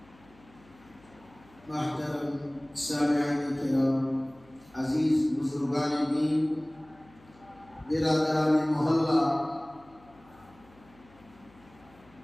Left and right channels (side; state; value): left; noise; hum, 26 dB below the sound